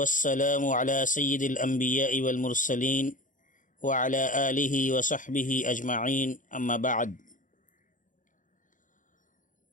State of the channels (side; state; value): right; late; 0.38 ms